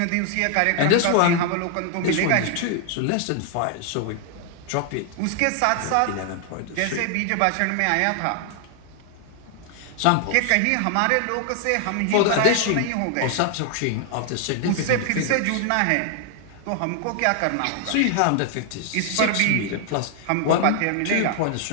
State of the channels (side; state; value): both; different; correlation 0.00